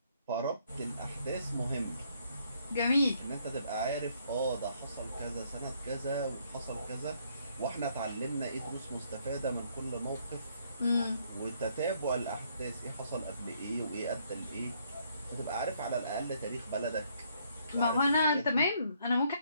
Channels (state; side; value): inverted; both; correlation -0.69